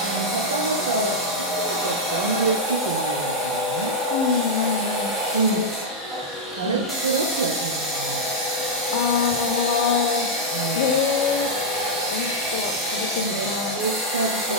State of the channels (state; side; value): normal; both; correlation -0.04